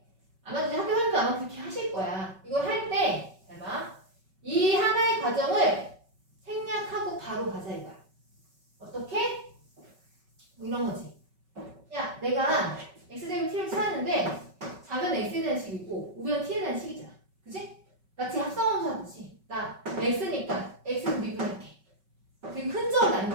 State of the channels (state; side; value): late; left; 5.3 ms